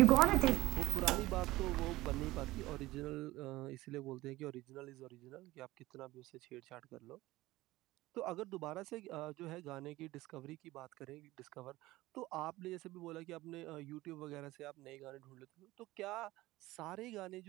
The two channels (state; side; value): quieter; left; 18.3 dB